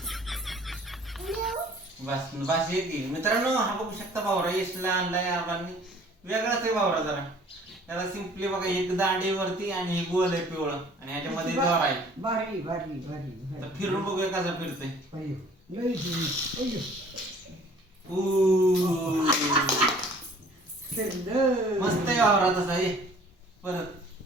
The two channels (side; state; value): both; normal; correlation 0.53